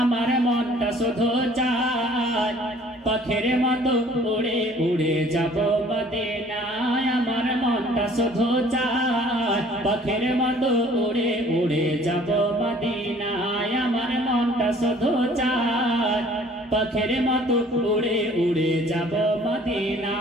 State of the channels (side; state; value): both; normal; correlation 0.54